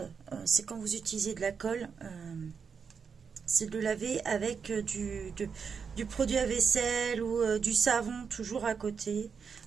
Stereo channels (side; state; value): left; quieter; 6.1 dB